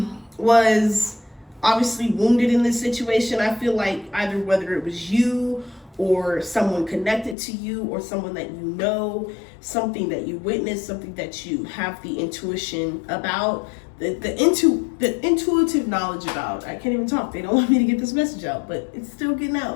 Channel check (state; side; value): drops out; right; at 7.4 s